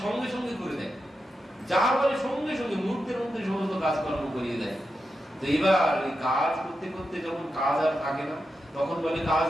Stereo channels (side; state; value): both; normal; correlation 0.88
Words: সঙ্গে সঙ্গে করে দেয়, যা বলে সঙ্গে সঙ্গে মুহূর্তের মধ্যে সমস্ত কাজকর্ম করিয়ে দেয়। তো এবার ওই কাজ করতে করতে যখন কাজ আর থাকে না, তখন বলে কাজ